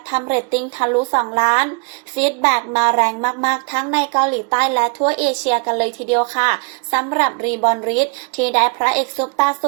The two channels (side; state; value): left; quieter; 34.6 dB